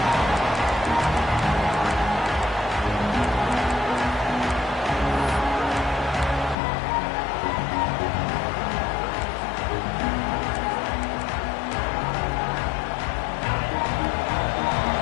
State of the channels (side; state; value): right; drops out; at 6.6 s